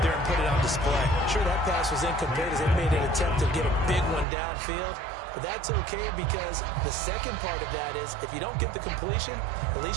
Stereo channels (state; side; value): drops out; left; at 4.2 s